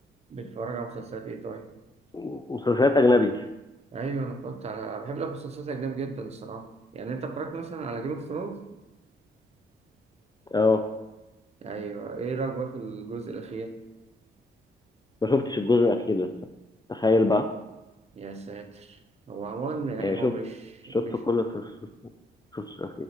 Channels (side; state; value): both; normal; correlation 0.73